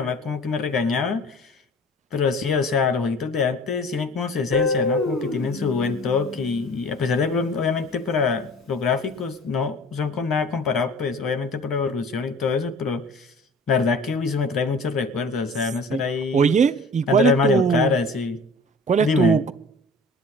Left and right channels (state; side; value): normal; both; correlation 0.44